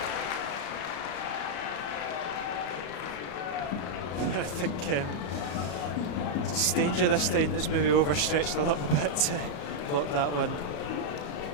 I think it's Stanger this time that's maybe overstretched a little bit to block that one.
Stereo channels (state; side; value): late; right; 34 ms